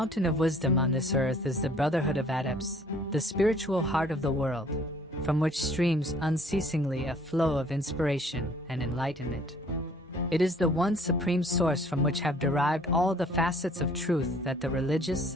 of wisdom on this earth is the brotherhood of adepts, the spiritual heart of the world, from which streams unceasingly a flow of inspiration and enlightenment. It is the one supreme source from which have derived all the facets of truth that the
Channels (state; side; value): normal; both; correlation 0.57